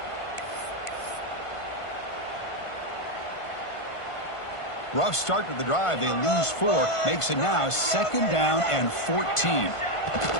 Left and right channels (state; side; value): late; right; 1.5 ms